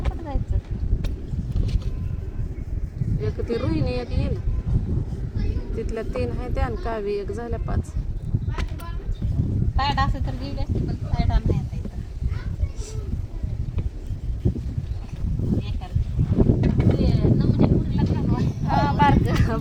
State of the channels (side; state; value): both; identical; correlation 1.00